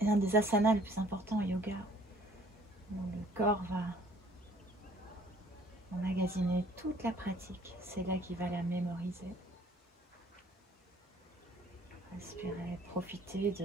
un des asanas les plus importants au yoga. Où le corps va emmagasiner toute la pratique. C'est là qu'il va la mémoriser. Respirez, profitez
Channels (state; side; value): normal; both; correlation 0.57